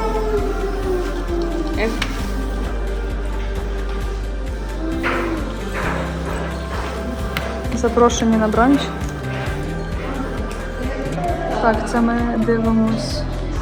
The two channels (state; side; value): identical; both; correlation 1.00